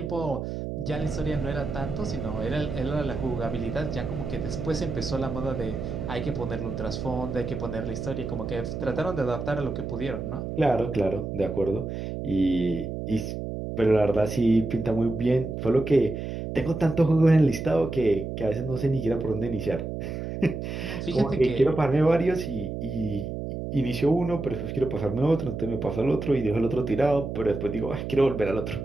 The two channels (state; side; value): noise; right; hum, 5 dB below the sound